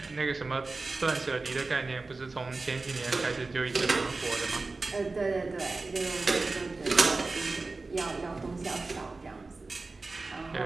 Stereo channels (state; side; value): quieter; left; 3.6 dB